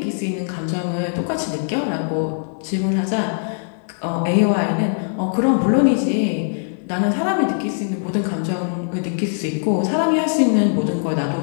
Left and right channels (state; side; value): silent; right; digital silence